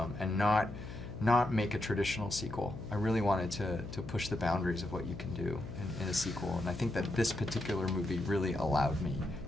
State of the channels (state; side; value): noise; left; hum, 11 dB below the sound